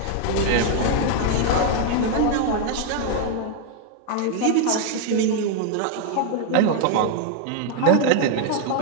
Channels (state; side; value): different; both; correlation 0.00